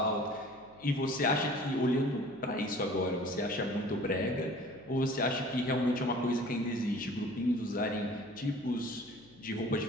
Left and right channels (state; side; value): noise; left; hum, 25 dB below the sound